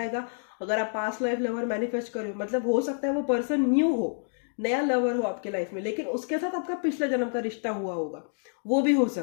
अगर आप पास्ट लाइफ लवर मैनिफेस्ट करो, मतलब हो सकता है वो पर्सन न्यू हो, नया लवर हो आपके लाइफ में, लेकिन उसके साथ आपका पिछला जन्म का रिश्ता हुआ होगा, वो भी हो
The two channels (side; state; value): right; silent; digital silence